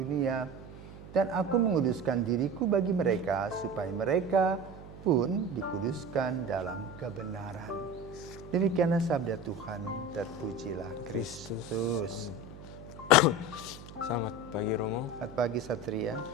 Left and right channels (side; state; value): right; noise; hum, 16 dB below the sound